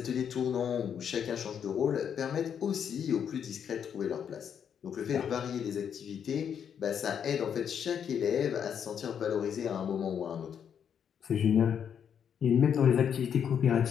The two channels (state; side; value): quieter; right; 8.1 dB